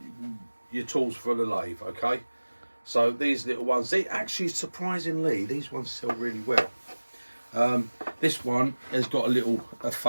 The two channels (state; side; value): inverted; both; correlation -1.00